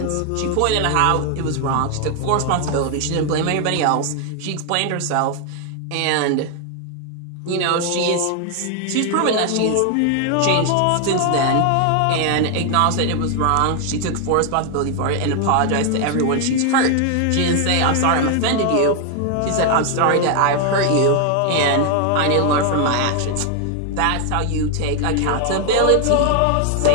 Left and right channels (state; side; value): different; both; correlation 0.00